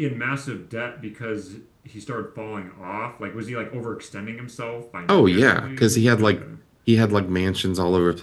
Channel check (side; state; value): both; identical; correlation 1.00